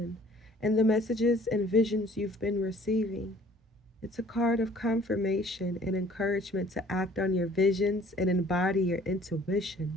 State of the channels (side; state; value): both; normal; correlation 0.54